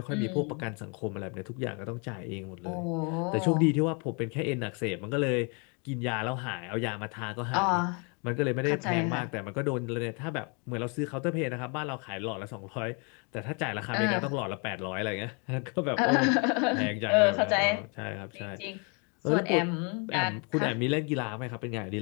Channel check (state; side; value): quieter; right; 34.8 dB